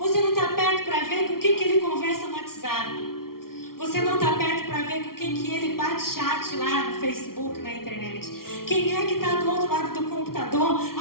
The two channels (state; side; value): late; right; 0.93 ms